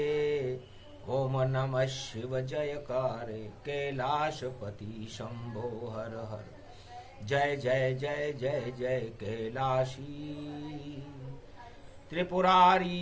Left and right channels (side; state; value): both; identical; correlation 1.00